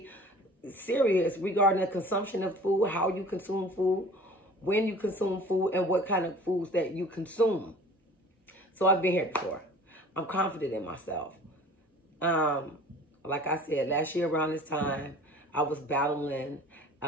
serious regarding the consumption of food, how you consume food, when you consume food, and what kind of foods that you consume. So I've been here before. I'm confident in myself. Like I said, last year around this time, I was battling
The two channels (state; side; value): normal; both; correlation 0.45